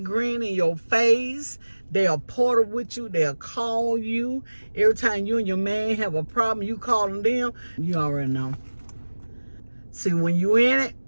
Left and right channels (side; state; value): both; inverted; correlation -1.00